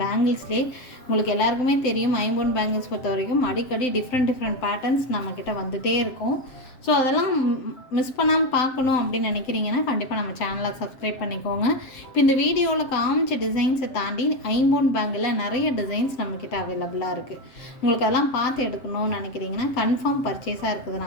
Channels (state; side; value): late; right; 7.4 ms